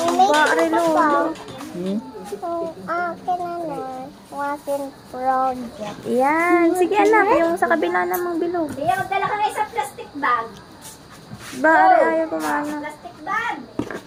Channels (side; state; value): both; identical; correlation 1.00